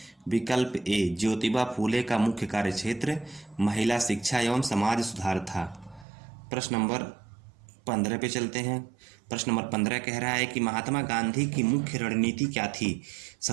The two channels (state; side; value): drops out; left; at 6.1 s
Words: विकल्प ए, ज्योतिबा फूले का मुख्य कार्य क्षेत्र महिला शिक्षा एवं समाज सुधार था। प्रश्न नंबर 15 पे चलते हैं। प्रश्न नंबर 15 कह रहा है कि महात्मा गांधी की मुख्य रणनीति क्या थी?